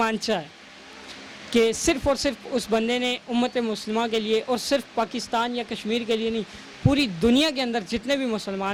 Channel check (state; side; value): identical; both; correlation 1.00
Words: ہے کہ صرف اور صرف اس بندے نے امت مسلمہ کے لیے، اور صرف پاکستان یا کشمیر کے لیے نہیں، پوری دنیا کے اندر جتنے بھی